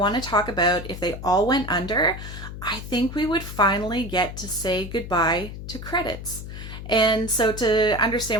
to talk about if they all went under, I think we would finally get to say goodbye to credits. And so to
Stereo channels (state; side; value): noise; left; hum, 10 dB below the sound